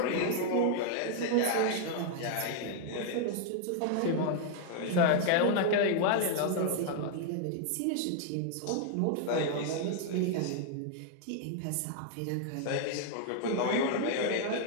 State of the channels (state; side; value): different; both; correlation -0.01